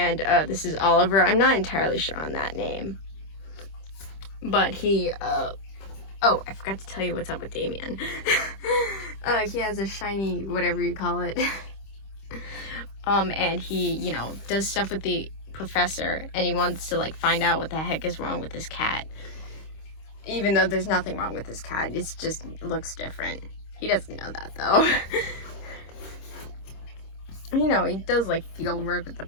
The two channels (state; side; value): late; right; 26 ms